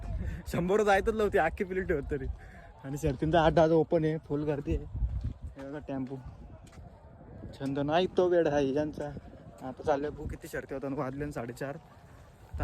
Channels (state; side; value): identical; both; correlation 1.00